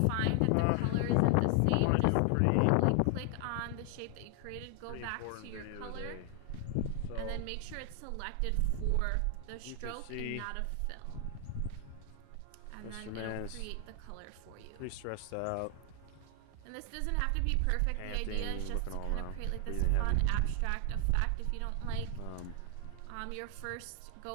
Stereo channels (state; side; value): different; both; correlation 0.00